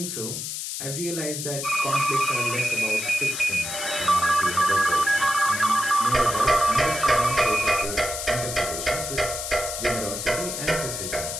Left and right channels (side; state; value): left; noise; hiss, 5 dB below the sound